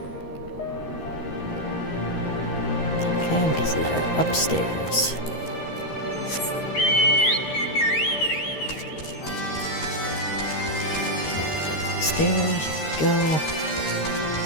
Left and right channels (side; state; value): right; late; 13 ms